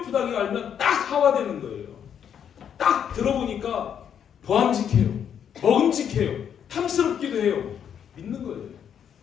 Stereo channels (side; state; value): right; quieter; 8.5 dB